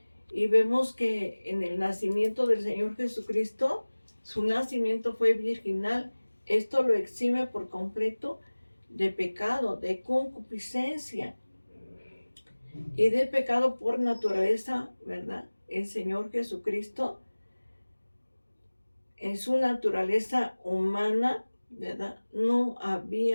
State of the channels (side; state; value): both; inverted; correlation -1.00